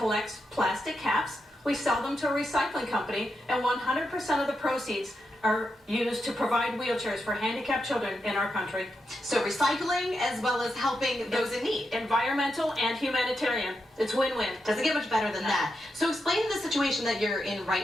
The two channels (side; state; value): both; normal; correlation 0.85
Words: plastic caps. We sell them to a recycling company, and 100% of the proceeds are used to provide wheelchairs for handicapped children in our country. So recycling as well as helping those in need. Environmental and humanitarian. It's win-win. Doesn't get much better than that. So explain the situation that you're in